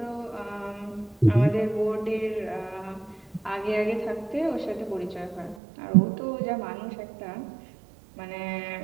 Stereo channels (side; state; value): left; drops out; at 5.6 s